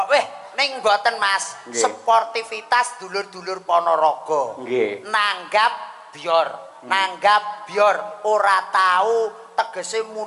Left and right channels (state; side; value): identical; both; correlation 1.00